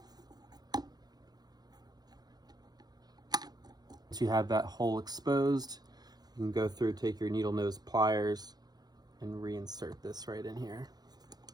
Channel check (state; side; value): late; left; 0.19 ms